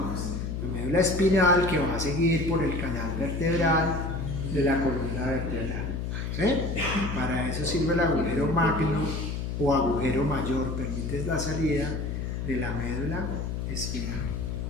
La médula espinal que va a seguir por el canal vertebral de la columna vertebral. ¿Sí? Para eso sirve el agujero magno o agujero mayor, permite la salida de la médula espinal.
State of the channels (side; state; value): left; noise; hum, 3 dB below the sound